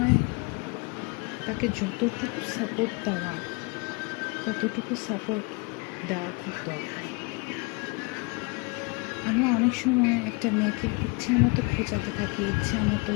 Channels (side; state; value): right; quieter; 29.6 dB